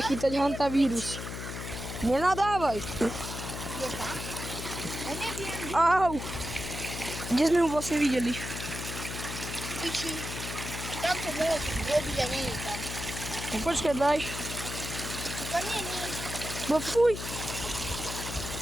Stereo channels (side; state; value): left; noise; hum, 7 dB below the sound